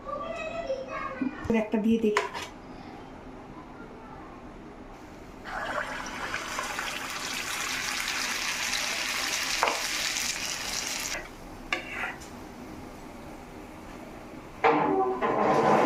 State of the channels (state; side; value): identical; both; correlation 1.00